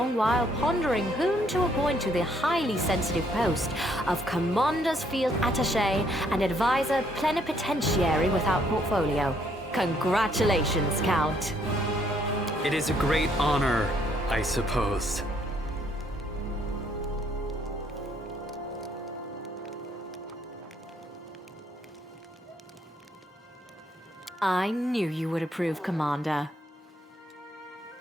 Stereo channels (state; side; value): normal; both; correlation 0.68